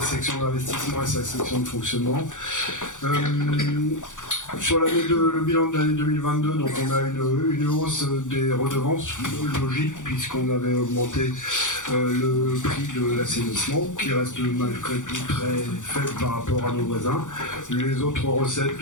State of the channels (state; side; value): late; right; 0.86 ms